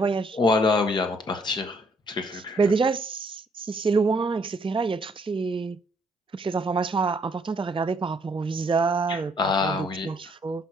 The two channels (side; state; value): both; normal; correlation 0.67